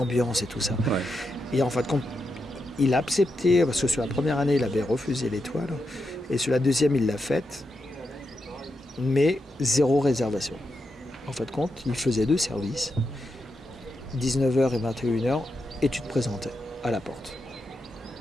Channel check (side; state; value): both; normal; correlation 0.85